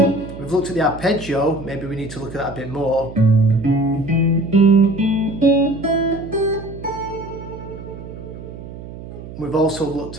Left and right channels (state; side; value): noise; right; hum, 13 dB below the sound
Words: we've looked at the arpeggio, maybe we need to look at that a bit more. We've also looked